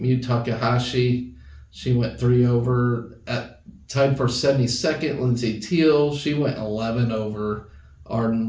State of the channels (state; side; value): identical; both; correlation 1.00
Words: Takahashi, she went 3 over. Tied for 72nd, Lindsay Teal, she went 11 over.